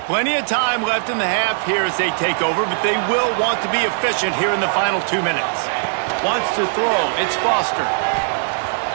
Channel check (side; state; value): left; silent; 58 dB below the other